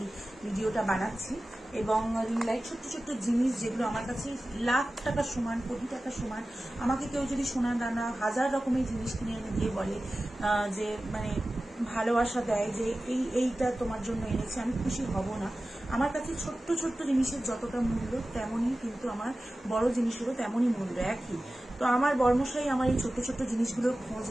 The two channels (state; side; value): normal; both; correlation 0.95